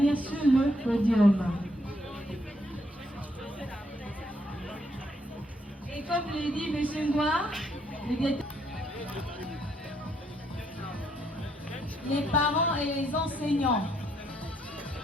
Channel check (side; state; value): both; normal; correlation 0.73